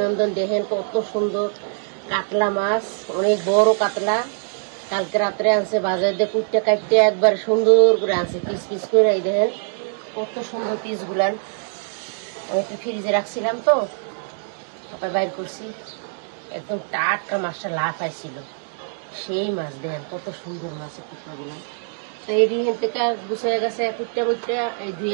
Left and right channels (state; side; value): silent; left; digital silence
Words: দেখেন কত সুন্দর কাতলা মাছ, অনেক বড় কাতলা। কালকে রাত্রে আনছে বাজার দিয়ে কুটতে কাটতে একবার সুন্দর করে আনছে পিস পিস করে। এই দেখেন কত সুন্দর পিস গুলান। আমি একটু ফ্রিজে রাখছিলাম তো সবাই বাইর করছি। একদম টাটকা মাছটা লাফাইছিল। সেই মাছ দেখেন কত সুন্দর মাছের টুকরা গুলান। তো এই থেকে গুছিয়ে গেছে কুটটা কুটটা এই